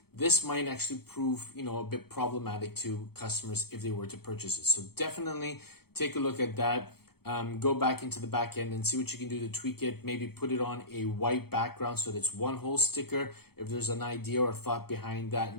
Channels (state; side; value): late; right; 0.96 ms